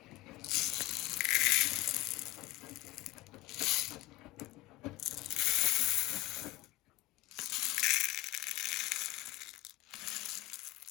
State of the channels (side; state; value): right; quieter; 17.9 dB